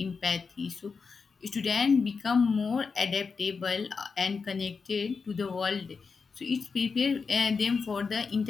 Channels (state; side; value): quieter; right; 5.1 dB